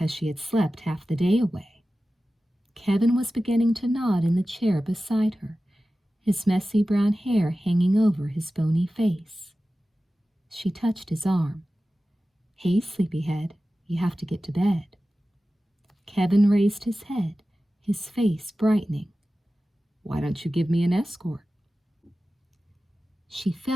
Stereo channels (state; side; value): normal; both; correlation 0.95